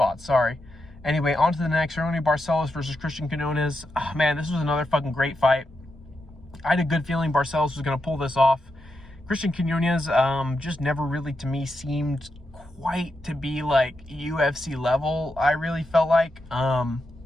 Sorry. Anyway, on to the next. Barcelos versus Christian Quinones. Oh, man, this was another fucking great fight. I had a good feeling Barcelos was going to pull this off. Christian Quinones just never really, to me, seemed quite to be like UFC level, I really felt like.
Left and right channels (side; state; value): both; normal; correlation 0.85